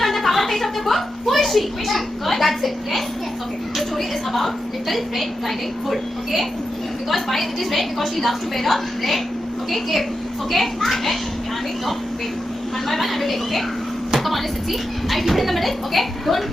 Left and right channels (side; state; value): both; normal; correlation 0.88